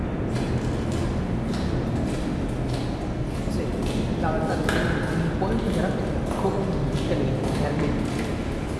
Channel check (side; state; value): both; identical; correlation 1.00